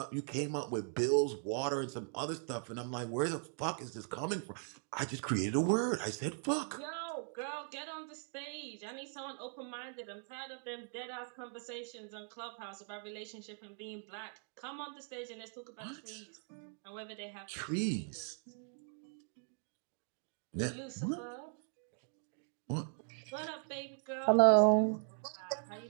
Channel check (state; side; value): silent; left; 52 dB below the other